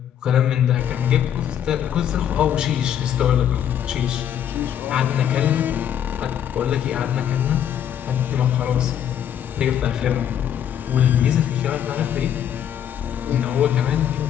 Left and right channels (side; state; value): right; quieter; 9.6 dB